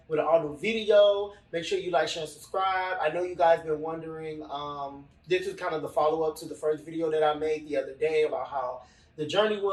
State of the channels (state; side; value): identical; both; correlation 1.00